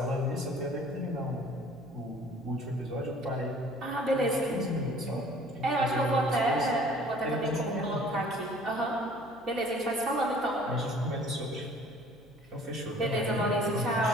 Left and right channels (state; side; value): noise; right; hum, 28 dB below the sound